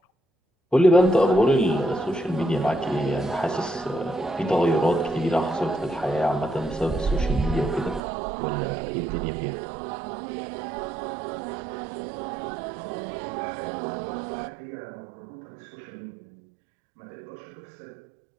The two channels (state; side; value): drops out; left; at 8.0 s